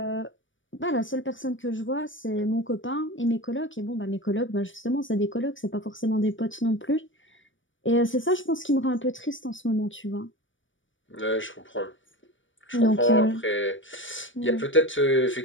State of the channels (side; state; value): right; late; 0.56 ms